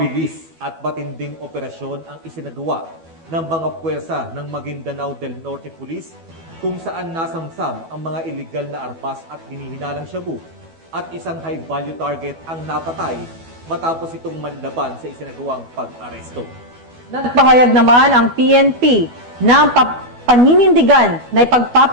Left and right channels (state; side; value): late; left; 12 ms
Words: at matinding operasyon ang isinagawa ng mga puwersa ng Maguindanao del Norte Police kung saan nasamsam ang mga iligal na armas at hinihinalang shabu at isang high-value target ang napatay matapos itong manlaban sa isinagawang pag-aresto. Nagpahayag naman ang PNP na paninindigan na